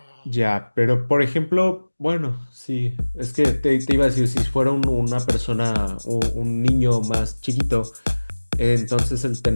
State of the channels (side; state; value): both; inverted; correlation -1.00